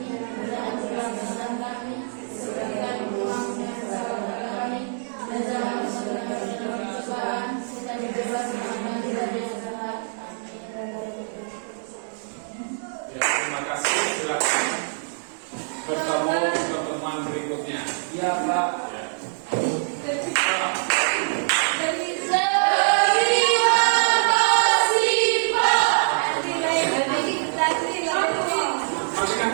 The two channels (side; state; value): left; silent; digital silence